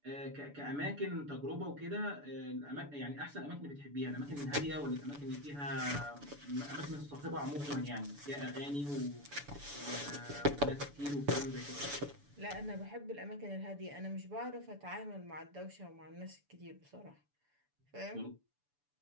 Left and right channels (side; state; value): left; late; 6.9 ms